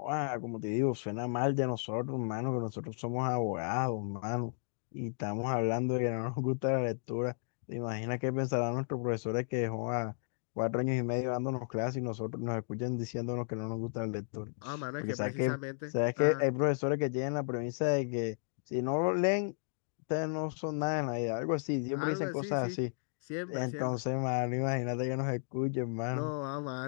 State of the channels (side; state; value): right; silent; digital silence